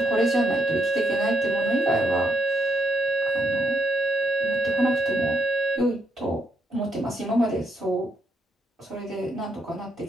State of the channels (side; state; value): both; normal; correlation 0.78